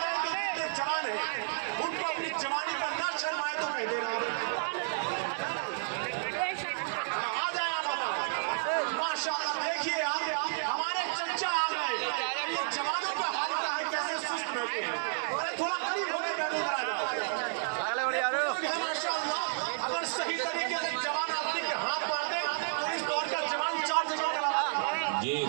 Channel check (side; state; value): left; silent; 57 dB below the other